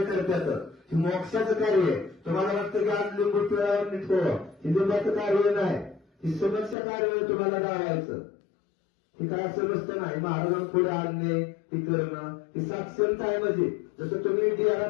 करतात. हे मोक्षाचं कार्य आहे. तुम्हाला वाटतं की आज लिंबू पिळावर निघतो. हे लिंबाचं कार्य नाही. ही समस्या कार्य आहे तुम्हाला गावायचं. हे काय असं नसतं नाही. महाराजांना पुढे आणणे हे करणं ही साक्षरता आहे म्हणजे जसं तुम्ही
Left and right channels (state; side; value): drops out; right; at 6.8 s